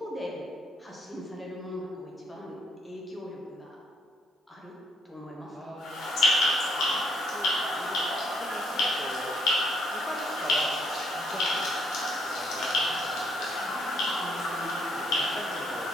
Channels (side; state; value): both; normal; correlation 0.69